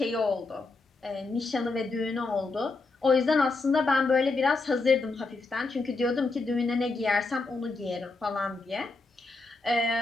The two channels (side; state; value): right; quieter; 3.6 dB